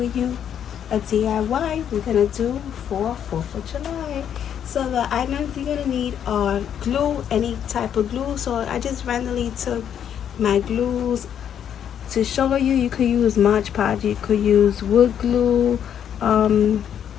you a DIY we're going to do for 4th of July. So the items you're going to need are glue, any type of glue. So I just randomly took my glues to show you. You could use Mod Podge, you could use wood glue, um,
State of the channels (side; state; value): right; quieter; 9.1 dB